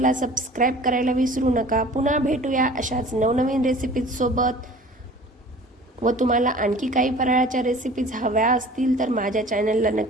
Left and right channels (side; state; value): both; normal; correlation 0.45